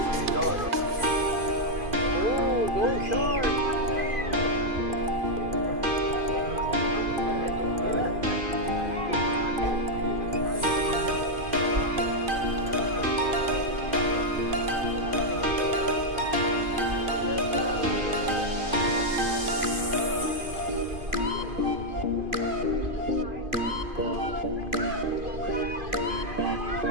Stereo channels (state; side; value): late; left; 2.5 ms